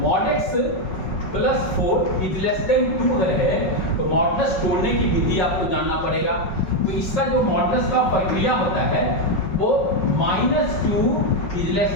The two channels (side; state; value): right; late; 5.4 ms